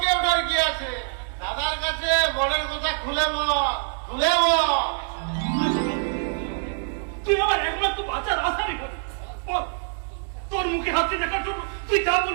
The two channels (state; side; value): silent; left; 62 dB below the other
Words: ওঠার কি আছে, দাদার কাছে বনের কথা খুলে বল, খুলে বল। তুই আমার একমাত্র বাচ্চার আশারই করি, তোর মুখে হাসি দেখার জন্য তুই যা